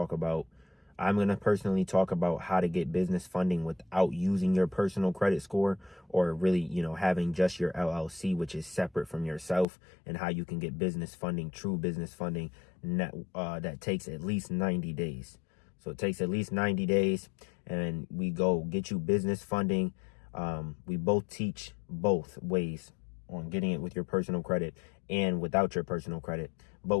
about, I'm going to personally talk about how to get business funding without using your personal credit score, or really, having just your LLC, which is separate from yourself, and how you can get business funding, true business funding, that takes at least 90 days. So it takes at least 90 days, and we go get you business funding. We both teach both ways on getting it with your personal credit and without your personal credit. But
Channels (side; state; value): right; drops out; at 9.7 s